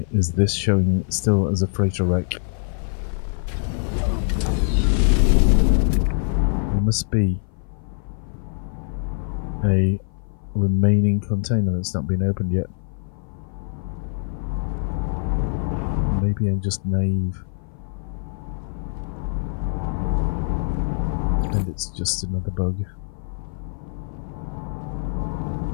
is this showing still as a freighter wreck? There must be a remaining container that's not been opened yet. Maybe I'm just naive. And it's just another bug.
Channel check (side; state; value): right; silent; 56 dB below the other